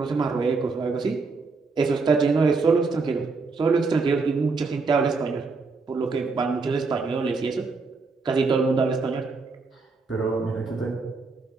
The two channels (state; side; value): quieter; left; 4.2 dB